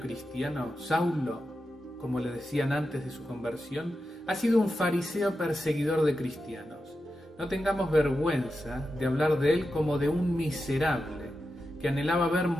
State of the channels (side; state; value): both; normal; correlation 0.90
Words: Saulo, como le decían antes de su conversión, ha sido un fariseo perseguidor de cristianos. No tengamos vergüenza de hablar de él como de un miserable que anhelaba ver